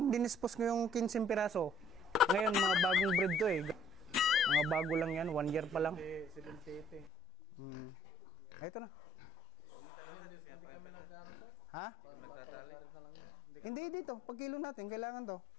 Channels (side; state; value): right; drops out; at 7.1 s